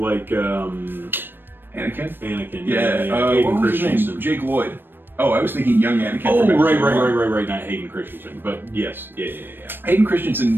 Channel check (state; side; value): late; left; 0.096 ms